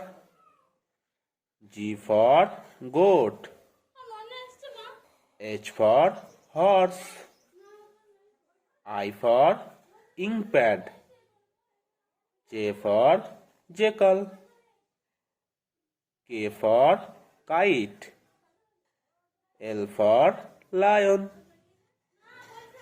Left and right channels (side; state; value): both; identical; correlation 1.00